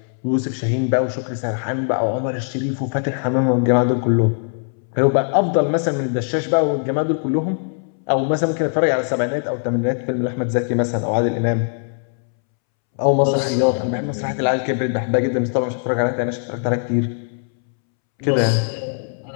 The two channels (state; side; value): silent; right; 65 dB below the other